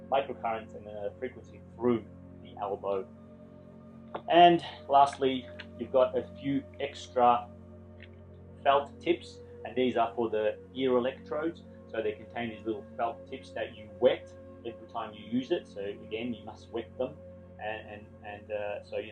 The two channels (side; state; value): both; identical; correlation 1.00